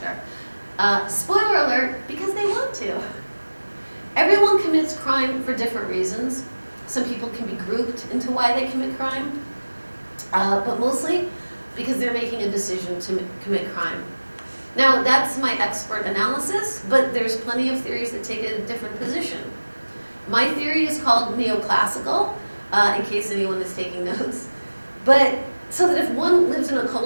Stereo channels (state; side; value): inverted; both; correlation -1.00